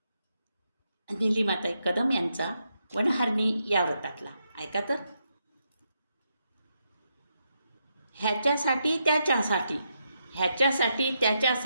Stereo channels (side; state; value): both; inverted; correlation -0.81